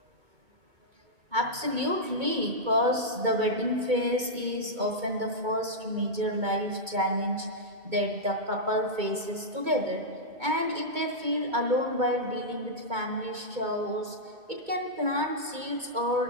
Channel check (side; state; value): left; late; 2.2 ms